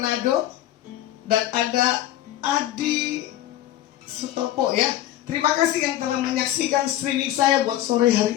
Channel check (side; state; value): right; quieter; 13.5 dB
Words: Dan ada Adi Sutopo, ya. Terima kasih yang telah menyaksikan streaming saya buat sore hari